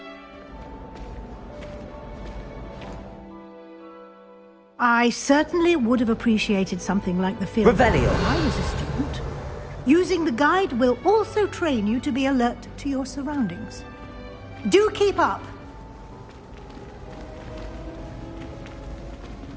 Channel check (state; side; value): identical; both; correlation 1.00